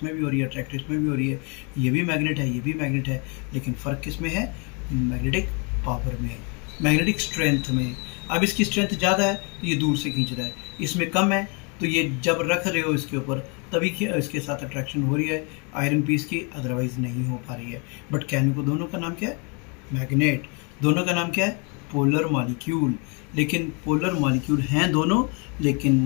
भी हो रही है, अट्रैक्ट इसमें भी हो रही है। ये भी मैग्नेट है, ये भी मैग्नेट है, लेकिन फ़र्क किस में है? मैग्नेटिक पावर में, मैग्नेटिक स्ट्रेंथ में। अब इसकी स्ट्रेंथ ज़्यादा है तो ये दूर से खींच रहा है, इसमें कम है तो ये जब रख रहे हो इसके ऊपर तभी इसके साथ अट्रैक्शन हो रही है आयरन पीस की, अदरवाइज नहीं हो पा रही है। बट कहने को दोनों का नाम क्या है? मैग्नेट। दोनों का नाम क्या है? Polar molecule. लेकिन पोलर मॉलिक्यूल हैं दोनों, लेकिन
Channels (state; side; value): quieter; right; 33.1 dB